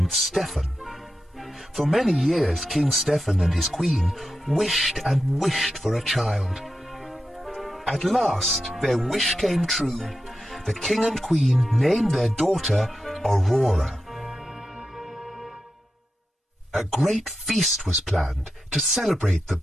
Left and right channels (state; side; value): normal; both; correlation 0.90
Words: Stephen. For many years King Stephen and his queen wished and wished for a child. At last their wish came true. The king and queen named their daughter Aurora. A great feast was planned to celebrate the